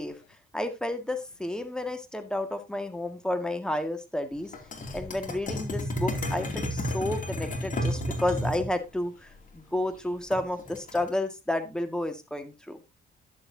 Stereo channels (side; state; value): both; normal; correlation 0.83